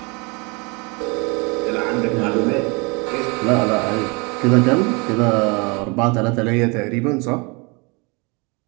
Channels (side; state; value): left; quieter; 29.2 dB